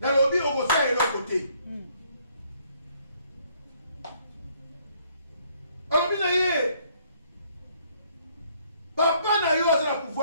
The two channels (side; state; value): both; inverted; correlation -0.66